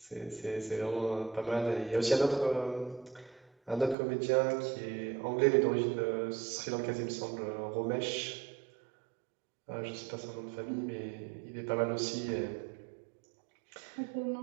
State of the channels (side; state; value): left; drops out; at 4.0 s